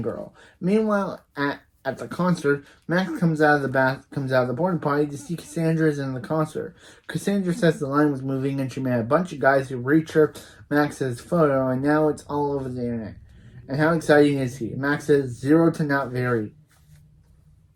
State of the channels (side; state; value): both; identical; correlation 1.00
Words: Meanwhile, at the concert, Max comes out of the porta potty to see Cassandra's in the concert. Cassandra says the line was moving, and she met a bunch of guys who reached Max's photo, and now it's all over the internet. And how exciting is he? Max says 0 to not very.